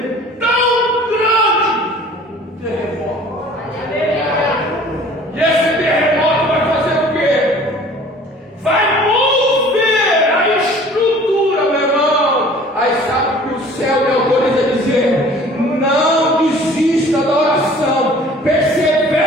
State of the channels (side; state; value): both; normal; correlation 0.49